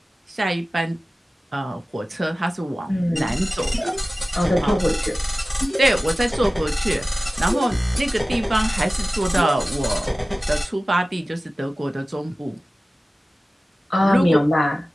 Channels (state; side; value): normal; both; correlation 0.96